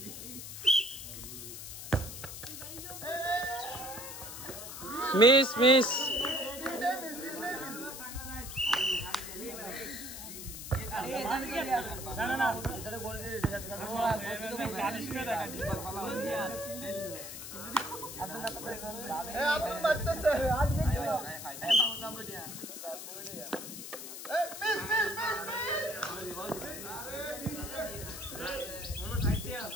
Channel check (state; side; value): noise; left; hiss, 9 dB below the sound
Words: Miss miss. Abdul মারতেছে।